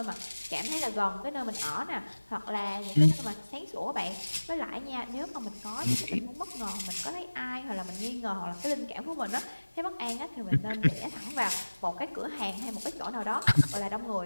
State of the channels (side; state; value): both; inverted; correlation -1.00